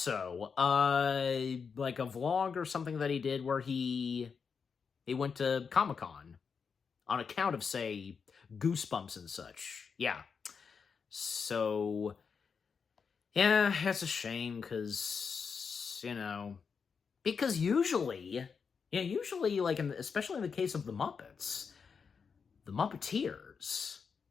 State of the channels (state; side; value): quieter; right; 5.9 dB